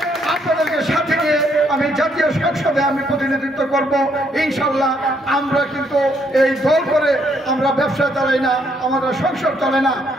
জাতীয় সংসদে আমি প্রতিনিধিত্ব করব ইনশাল্লাহ। আমরা কিন্তু এই দল করে আমরা ব্যবসা চালাই না, আমাদের সংসার চলে না।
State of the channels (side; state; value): both; normal; correlation 0.71